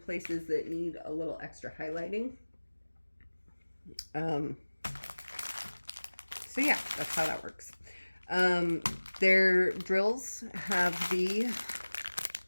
that need a little extra highlighting. So yeah, that's how that works. Their drills have the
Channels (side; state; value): both; inverted; correlation -1.00